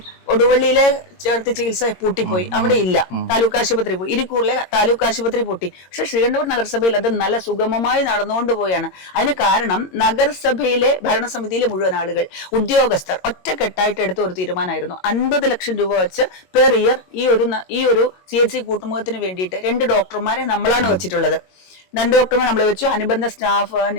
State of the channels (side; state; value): right; late; 22 ms